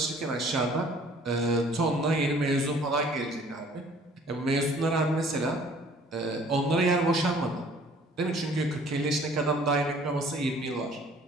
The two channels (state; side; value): normal; both; correlation 0.54